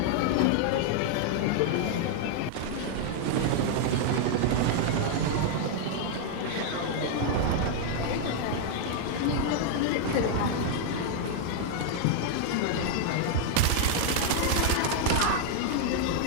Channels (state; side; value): different; both; correlation 0.00